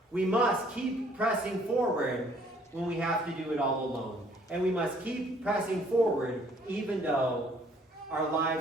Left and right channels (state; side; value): normal; both; correlation 0.61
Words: We must keep pressing forward when we have to do it all alone. And we must keep pressing forward even though our